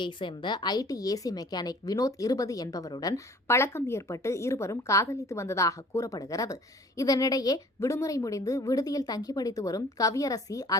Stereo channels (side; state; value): both; normal; correlation 0.50